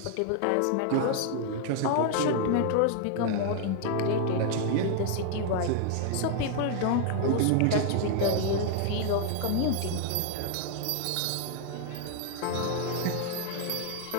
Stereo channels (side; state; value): both; different; correlation 0.00